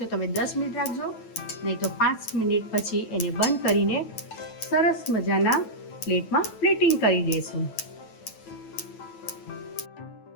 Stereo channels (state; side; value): late; right; 9.1 ms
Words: તો તમે 10 મિનિટ રાખજો, નહીં તો 5 મિનિટ પછી એને બંધ કરીને સરસ મજાના પ્લેટમાં પ્લેટિંગ કરી દઈશું.